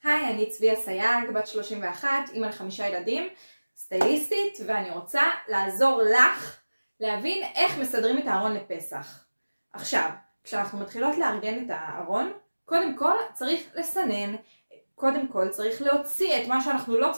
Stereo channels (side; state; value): both; inverted; correlation -1.00